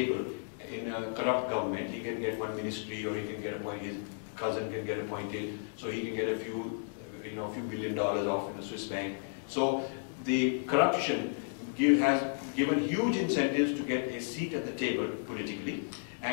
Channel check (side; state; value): right; silent; 56 dB below the other